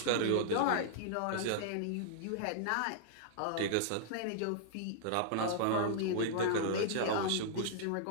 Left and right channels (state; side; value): different; both; correlation -0.01